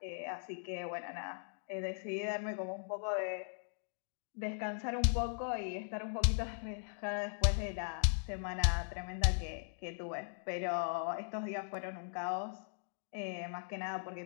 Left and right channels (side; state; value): right; silent; digital silence